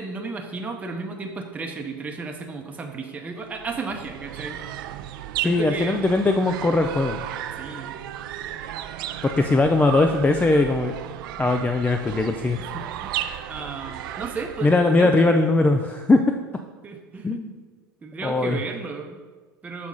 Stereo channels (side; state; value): both; normal; correlation 0.72